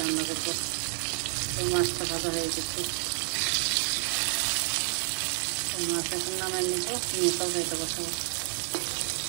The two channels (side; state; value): left; silent; digital silence